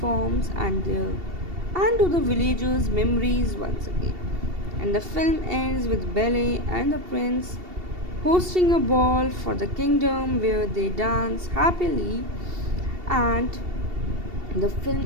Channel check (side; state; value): left; late; 2.7 ms